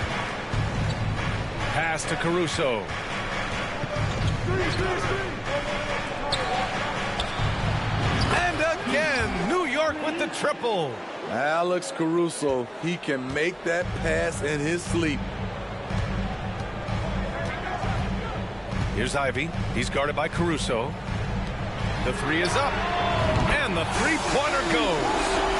Pass to Caruso. And again, New York with the triple. Alex Caruso, he can make that pass in his sleep. Here's Ivey. He's guarded by Caruso. The three is up. And the three-pointer goes.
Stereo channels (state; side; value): identical; both; correlation 1.00